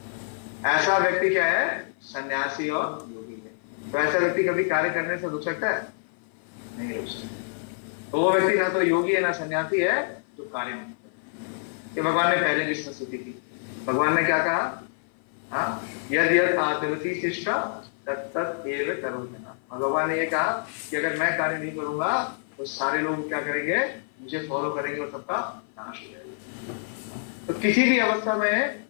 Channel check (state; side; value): silent; right; 55 dB below the other